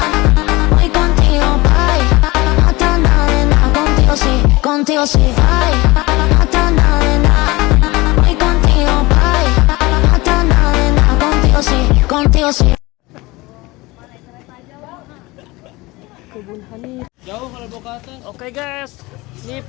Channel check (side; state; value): right; quieter; 21.8 dB